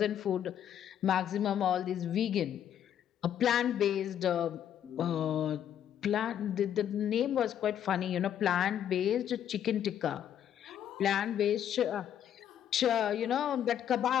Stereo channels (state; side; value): quieter; right; 9.9 dB